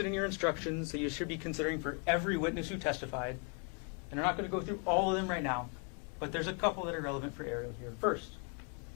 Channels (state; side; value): quieter; right; 35.9 dB